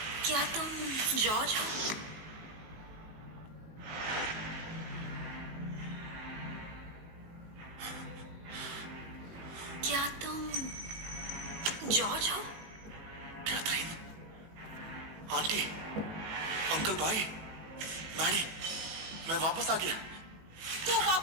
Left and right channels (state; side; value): late; left; 19 ms